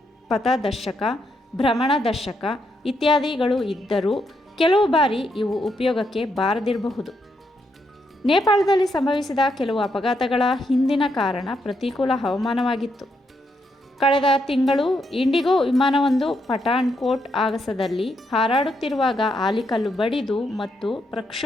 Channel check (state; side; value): normal; both; correlation 0.79